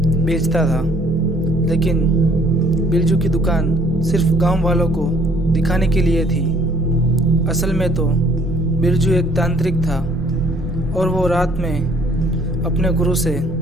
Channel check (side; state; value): both; normal; correlation 0.60